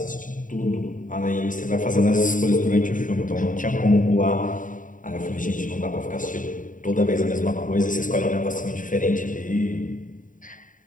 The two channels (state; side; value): late; right; 0.38 ms